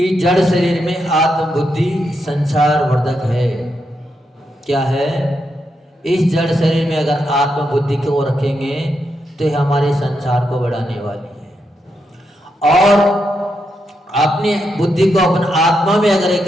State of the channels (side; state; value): both; normal; correlation 0.83